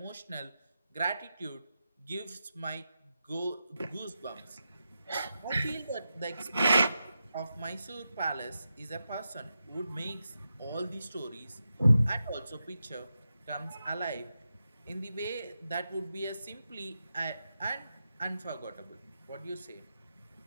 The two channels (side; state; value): both; inverted; correlation -0.89